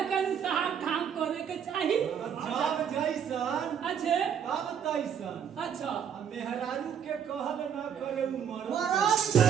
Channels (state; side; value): quieter; left; 8.1 dB